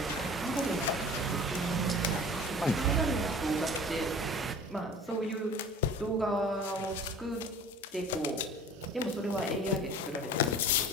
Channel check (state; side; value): normal; both; correlation 0.42